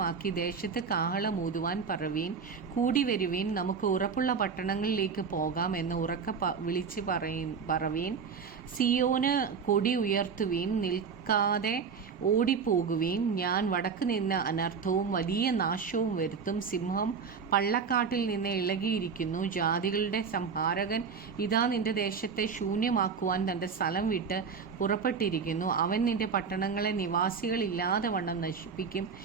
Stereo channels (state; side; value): quieter; left; 5.9 dB